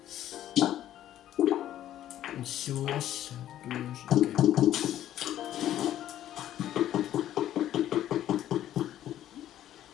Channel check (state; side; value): quieter; right; 12.2 dB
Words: Une source, douche, ok.